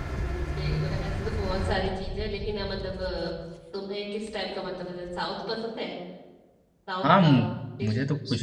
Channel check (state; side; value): identical; both; correlation 1.00